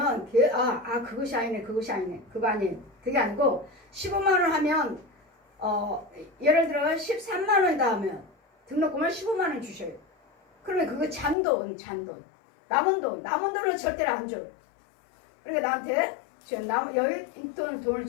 그것이 아니네 그거 아니에요. 그게 아니고 15만원 하면 예를 들어 13만원이다 하면 등록금을 15만원 주셔요. 그러면 그거 잔돈 남은 돈은 절대로 안 줘요. 그러니까 나한테 지금 여유 있던 돈을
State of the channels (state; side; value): drops out; right; at 11.4 s